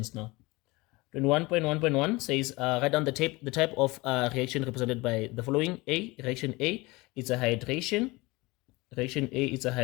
now. 21.1.1 says write down the type of reaction represented by the following. Reaction A, it's a hydration. Reaction A is a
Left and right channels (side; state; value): right; quieter; 22.9 dB